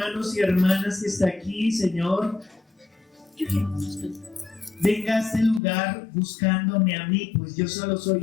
y hermanas que está aquí, Señor, venga a este lugar buscándome a mí, pues yo solo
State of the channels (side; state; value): right; drops out; at 5.6 s